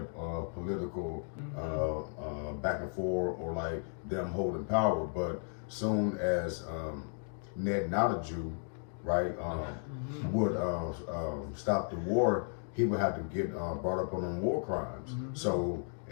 political back and forth or like them holding power. But soon as Ned, not a Jew, right, would stop the war, he would have to get brought up on them war crimes. So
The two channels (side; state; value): right; silent; 55 dB below the other